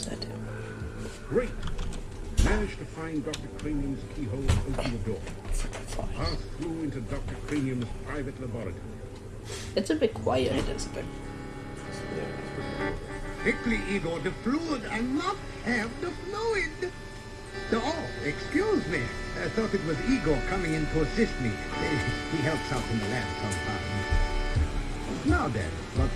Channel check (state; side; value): identical; both; correlation 1.00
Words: that do? Great. Managed to find Dr. Cranium's keyhole and open the door. Pass through into Dr. Cranium's private laboratory. It's a bit quiet. It is a bit. Quickly, Igor, the fluid. I must have the fluid. Oh, excuse me. I thought it was Igor coming in to assist me. He helps out in the lab sometimes. Now then, what